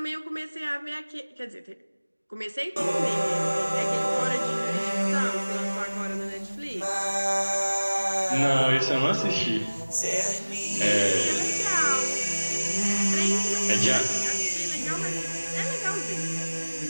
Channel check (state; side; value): inverted; both; correlation -1.00